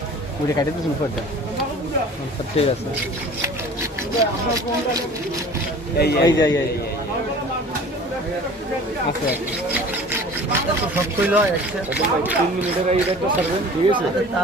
Udah kayak itu semua dah. Mantap deh rasa. Iya. Masuk. সব কইলো একটা 3 মিনিটের আগে একটা সার্ভেন ঠিক আছে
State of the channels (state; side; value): normal; both; correlation 0.44